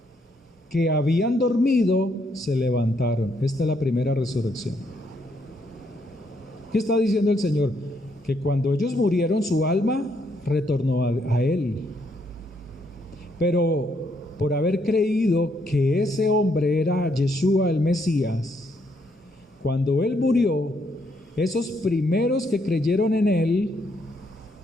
que habían dormido se levantaron. Esta es la primera resurrección. ¿Qué está diciendo el Señor? Que cuando ellos murieron, su alma retornó a Él. Pero por haber creído que ese hombre era Yeshua el Mesías, cuando Él murió, esos primeros que creyeron en Él,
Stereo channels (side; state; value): both; normal; correlation 0.73